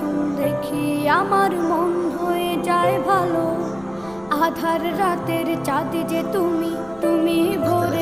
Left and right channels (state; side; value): noise; left; rumble, 23 dB below the sound